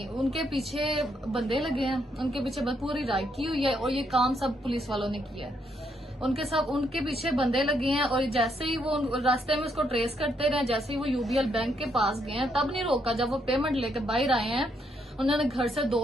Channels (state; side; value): normal; both; correlation 0.75